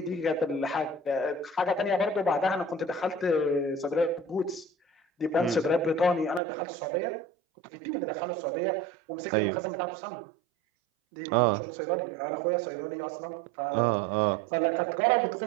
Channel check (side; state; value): left; drops out; at 6.4 s